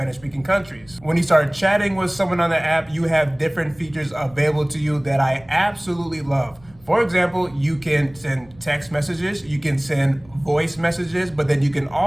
countries. When you start chatting with someone on the app, you have different features available to you that I absolutely love. For example, you can send text messages, you can send voice messages, but then you can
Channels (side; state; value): right; noise; rumble, 26 dB below the sound